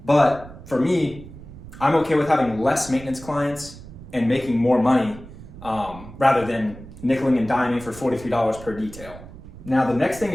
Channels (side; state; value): right; noise; rumble, 16 dB below the sound